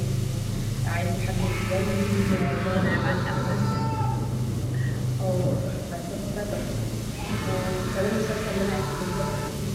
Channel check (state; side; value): identical; both; correlation 1.00